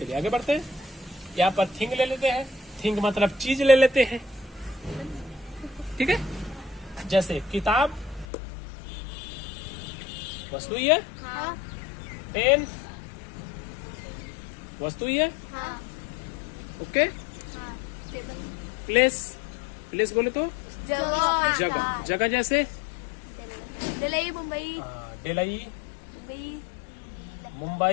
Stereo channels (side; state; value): right; drops out; at 8.2 s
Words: आगे बढ़ते हैं। यहाँ पर थिंग ले लेते हैं। थिंग मतलब चीज ले लेते हैं। ठीक है, जैसे किताब वस्तु ही है। पेन वस्तु ही है। ओके, प्लेस, प्लेस बोले तो जगह, जगह जैसे दिल्ली, मुंबई, दिल्ली,